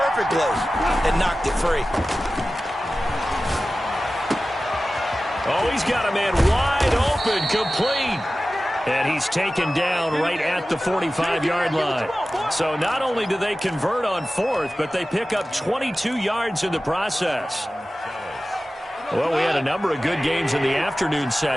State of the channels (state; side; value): normal; both; correlation 0.95